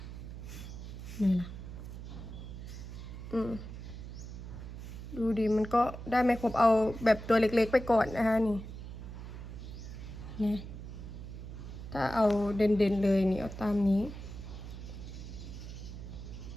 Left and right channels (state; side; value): noise; right; hum, 10 dB below the sound